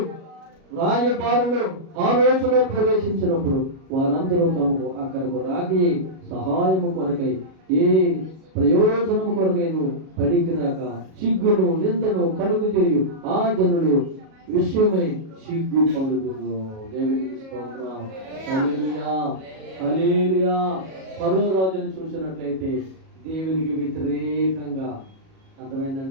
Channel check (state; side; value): late; left; 37 ms